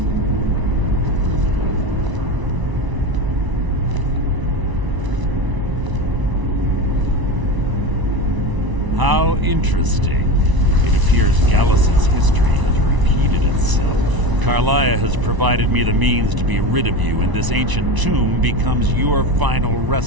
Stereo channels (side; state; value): left; late; 1.0 ms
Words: interesting. It appears Gallus's history has repeated itself. Karliah has provided me the means to be rid of you, and this ancient tomb becomes your final